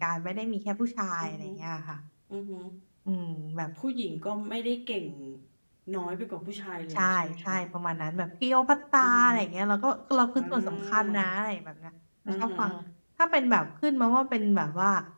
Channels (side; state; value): both; inverted; correlation -1.00